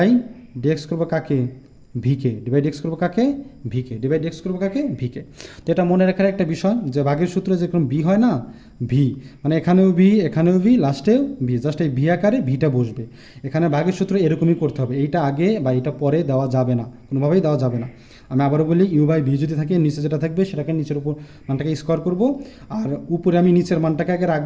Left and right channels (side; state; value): both; identical; correlation 1.00